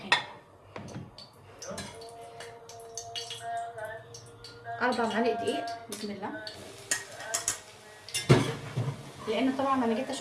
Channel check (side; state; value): both; identical; correlation 1.00